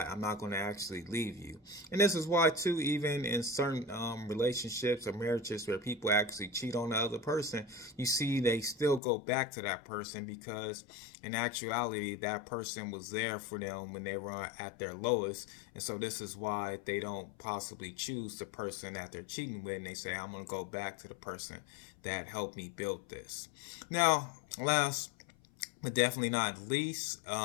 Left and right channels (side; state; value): right; drops out; at 9.0 s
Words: I'm not going to actually leave you. And this is why too, even in certain relationships or marriages where people actually cheat on the other person, you see they still go back to that person because in actuality that person was there for them when they were at their lowest. And so this is why they don't possibly choose the person that they're cheating with, and they say, I'm going to go back to the person that helped me build this. Now, last but definitely not least,